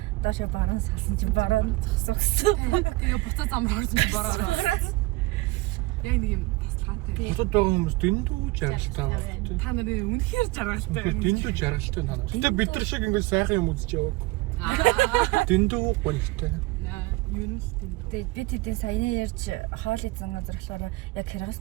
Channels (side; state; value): left; quieter; 21.6 dB